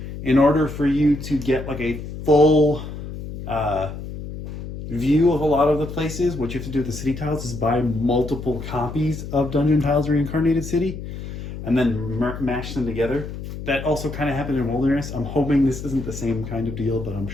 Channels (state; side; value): noise; left; hum, 9 dB below the sound